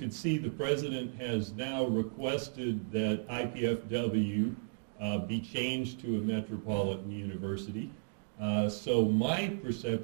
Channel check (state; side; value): silent; left; digital silence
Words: see, the president has now requested that IPFW be changed to a metropolitan university. So my